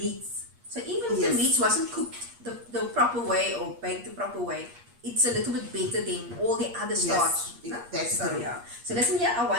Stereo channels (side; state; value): left; late; 8.4 ms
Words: So even if the Yes. meats wasn't cooked the proper way or baked the proper way, it's a little bit better than all the other starch. Yes, that's So true. yeah. So listen here, I